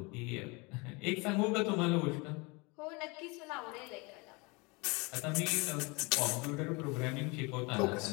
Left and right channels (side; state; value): right; quieter; 27.8 dB